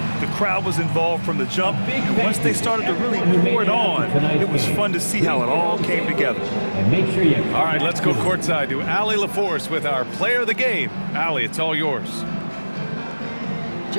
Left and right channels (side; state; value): both; inverted; correlation -1.00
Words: The crowd was involved from the jump, and once they started to really pour it on, it was fun to see how it all came together. All right, let's go courtside to Allie LaForce with our player of the game. Allie, it's all yours.